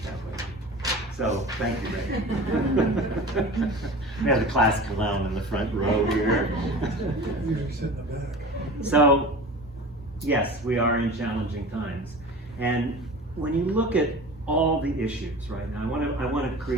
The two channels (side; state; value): both; normal; correlation 0.37